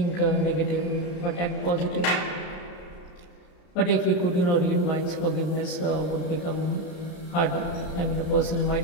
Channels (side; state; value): right; late; 33 ms